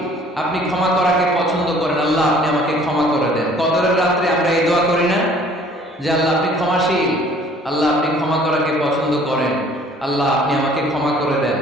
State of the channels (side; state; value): both; normal; correlation 0.55